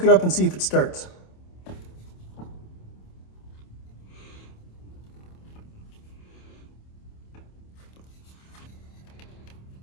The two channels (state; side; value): late; right; 27 ms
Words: it up and see if it starts.